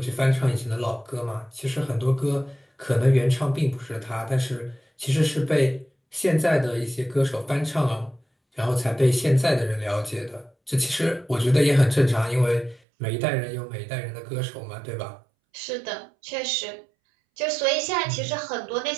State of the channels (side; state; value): left; drops out; at 12.8 s